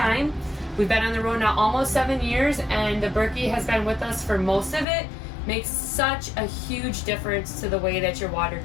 We've been on the road now almost 7 years, and the Berkey has been with us for most of it. Makes such a huge difference to the way that your water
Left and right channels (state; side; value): drops out; right; at 4.9 s